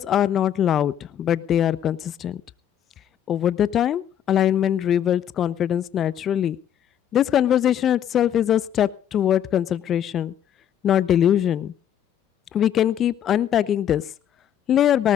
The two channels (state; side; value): quieter; right; 10.1 dB